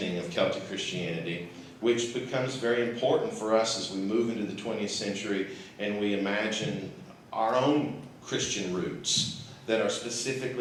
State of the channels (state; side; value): identical; both; correlation 1.00